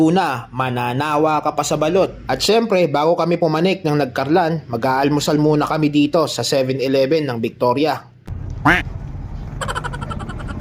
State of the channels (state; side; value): identical; both; correlation 1.00